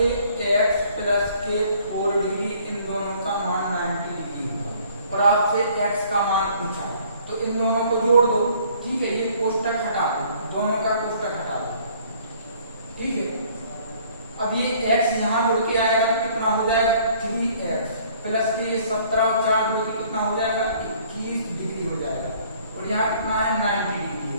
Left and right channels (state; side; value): inverted; both; correlation -0.58